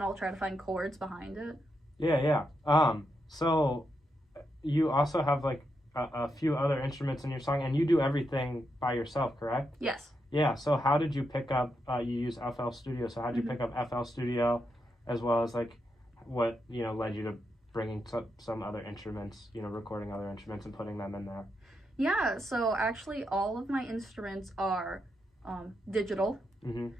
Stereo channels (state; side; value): normal; both; correlation 0.83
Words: I'll try to find chords behind it. Yeah. So you also have, like, a few other instruments in your song, and you do everything by yourself, correct? Yes. Yeah, so how did you pick up, you use FL Studio, so how did you pick up FL Studio, as well as, like, what, led you to bringing some other instruments, recording other instruments and putting them in there? Yeah, so actually all of my instruments are digital.